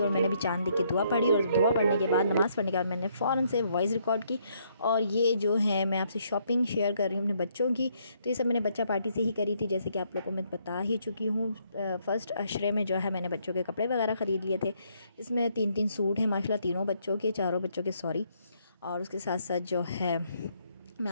मैंने भी चांद देख के दुआ पढ़ी और दुआ पढ़ने के बाद, नमाज़ पढ़ने के बाद मैंने फ़ौरन से वॉइस रिकॉर्ड की। और ये जो है मैं आपसे शॉपिंग शेयर कर रही हूँ अपने बच्चों की। तो ये सब मैंने बच्चा पार्टी से ही करी थी, जैसे कि आप लोगों को मैं बता ही चुकी हूँ। फ़र्स्ट अशरे में जो है मैंने बच्चों के कपड़े वगैरह ख़रीद लिए थे। इसमें 3-3 सूट हैं माशाल्लाह, तीनों बच्चों के, चारों बच्चों के सॉरी। और उसके साथ साथ जो है मैं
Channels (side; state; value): both; inverted; correlation -0.71